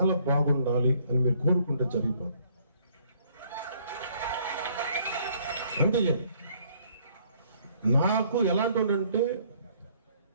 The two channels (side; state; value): both; inverted; correlation -0.63